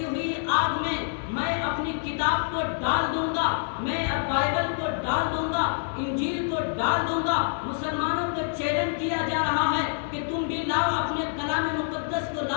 ہوئی آگ میں میں اپنی کتاب کو ڈال دوں گا، میں بائبل کو ڈال دوں گا، انجیل کو ڈال دوں گا۔ مسلمانوں کو چیلنج کیا جا رہا ہے کہ تم بھی لاؤ، اپنے کلام مقدس کو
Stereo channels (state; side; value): silent; right; 60 dB below the other